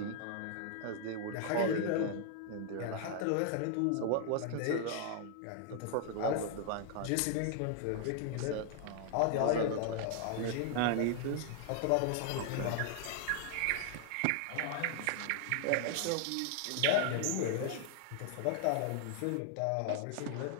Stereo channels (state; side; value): different; both; correlation 0.00